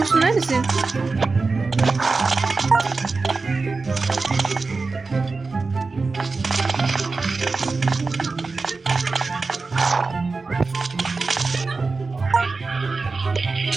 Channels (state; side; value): quieter; left; 4.0 dB